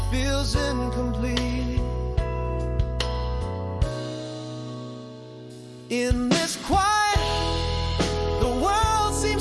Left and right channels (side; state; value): both; identical; correlation 1.00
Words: feels incomplete. In this quiet, the world